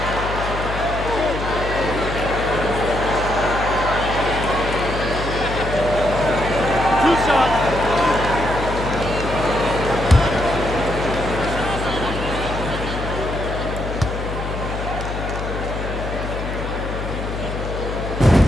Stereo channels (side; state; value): left; noise; hum, 5 dB below the sound